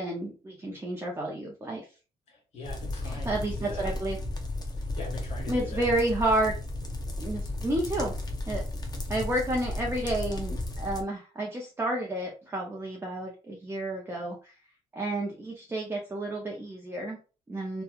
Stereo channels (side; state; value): both; normal; correlation 0.66